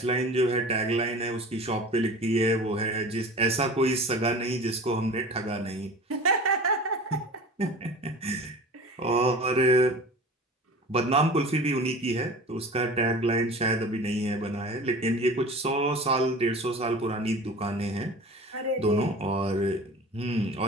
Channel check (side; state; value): both; normal; correlation 0.38